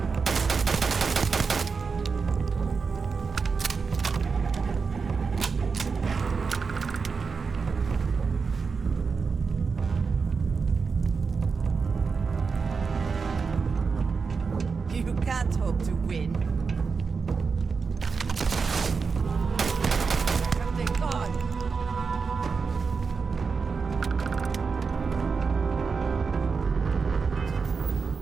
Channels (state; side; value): quieter; left; 5.1 dB